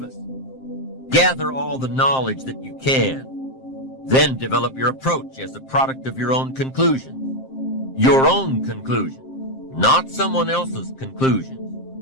us. Gather all the knowledge that you can. Then develop your approach as a product of your own conclusions. Your own conclusions, not someone else's conclusions.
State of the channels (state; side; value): late; right; 7.6 ms